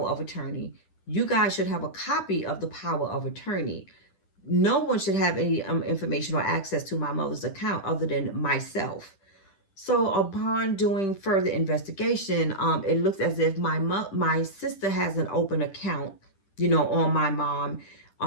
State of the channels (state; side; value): late; right; 10 ms